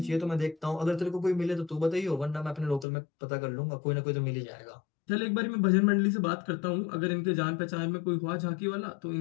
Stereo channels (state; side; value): drops out; right; at 2.9 s